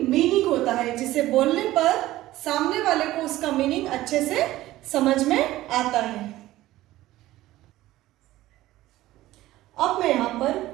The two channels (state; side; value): quieter; left; 16.0 dB